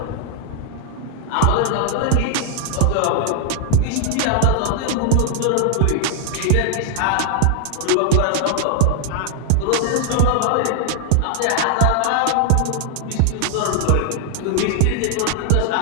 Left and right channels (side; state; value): both; different; correlation 0.00